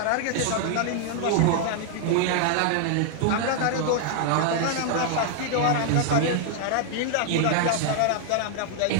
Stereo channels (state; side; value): different; both; correlation 0.00